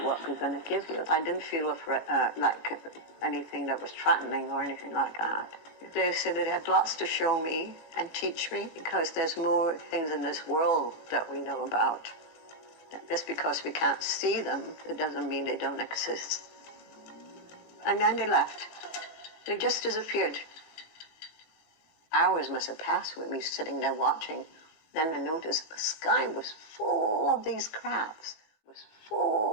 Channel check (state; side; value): late; right; 17 ms